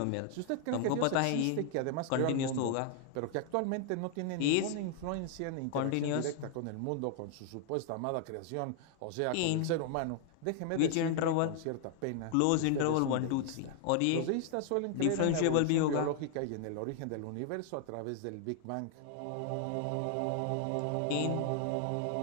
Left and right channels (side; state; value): both; different; correlation 0.00